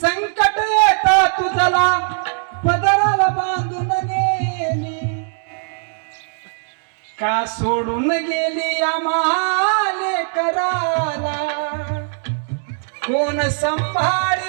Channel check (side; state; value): left; silent; 60 dB below the other